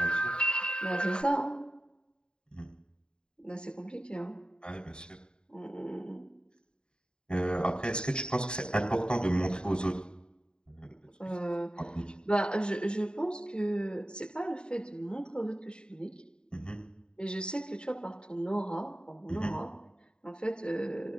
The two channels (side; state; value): right; late; 0.049 ms